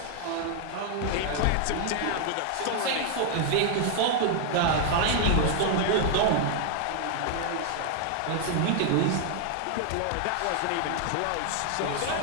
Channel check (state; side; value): different; both; correlation 0.00